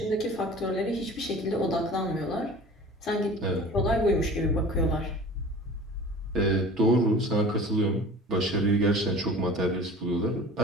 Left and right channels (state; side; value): normal; both; correlation 0.42